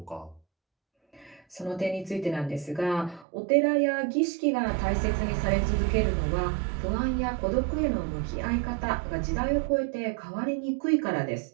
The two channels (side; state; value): left; drops out; at 3.2 s